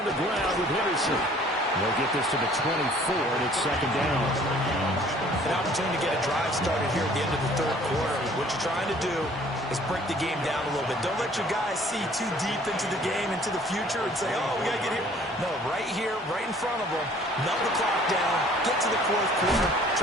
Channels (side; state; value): both; normal; correlation 0.54